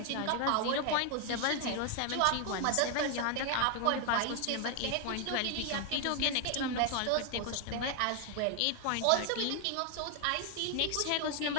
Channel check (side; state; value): both; different; correlation 0.01